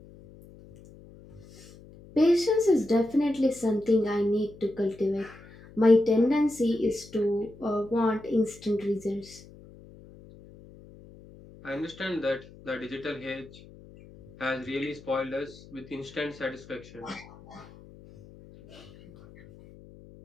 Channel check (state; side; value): noise; left; hum, 21 dB below the sound